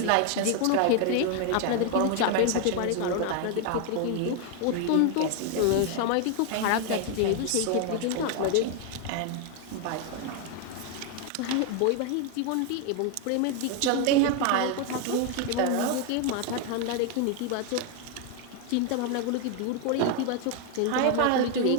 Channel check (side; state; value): both; different; correlation 0.01